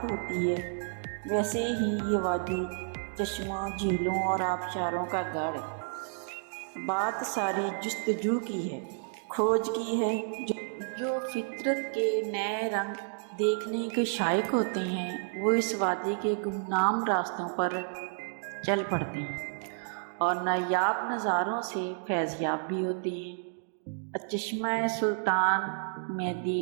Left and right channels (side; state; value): left; silent; digital silence